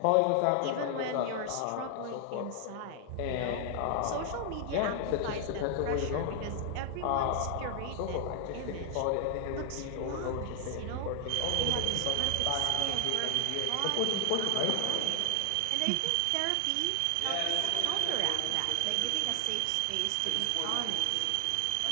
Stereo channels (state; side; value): different; both; correlation 0.00